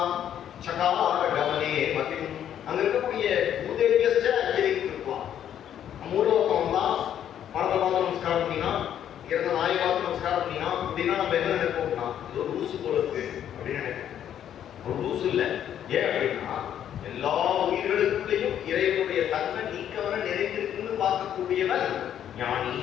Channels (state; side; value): quieter; right; 10.1 dB